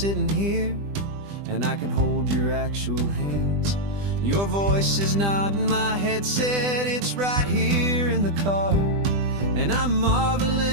here, and I can hold your actual hands. Your voice is not in my headset, it's right here in the car. And I'm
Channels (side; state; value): left; late; 20 ms